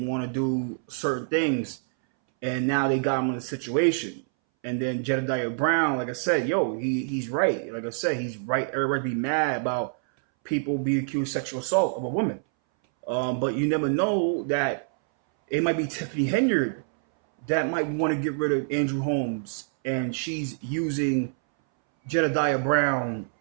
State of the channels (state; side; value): silent; left; 61 dB below the other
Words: want to do certain things, and now they got him in a situation. And then Jedidiah Brown, like I said, he's right. Like I said, he's right. Everybody be mad about people being accused of sexual assault of a woman. But you never know that it might be Tiffany Henyard that might want to get rid of Andrew Holmes, and she's using Jedidiah Brown.